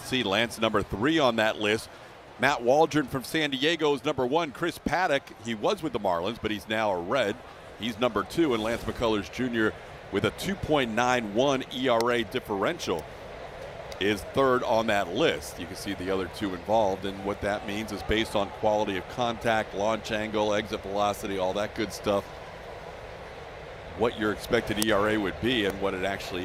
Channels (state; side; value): identical; both; correlation 1.00